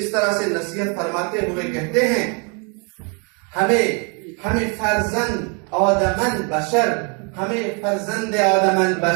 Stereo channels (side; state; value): left; quieter; 35.8 dB